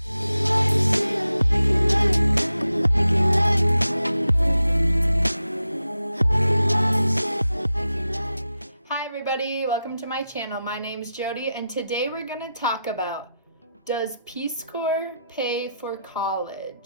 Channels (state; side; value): inverted; both; correlation -0.88